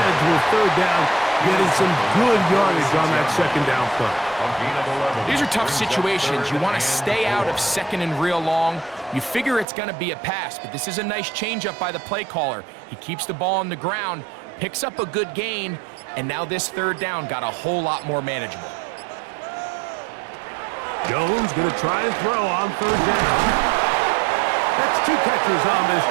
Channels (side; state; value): left; drops out; at 9.7 s